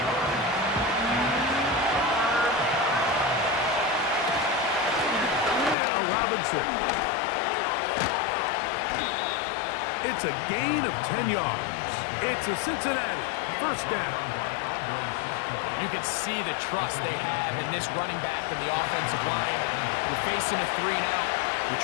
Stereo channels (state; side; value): drops out; right; at 5.8 s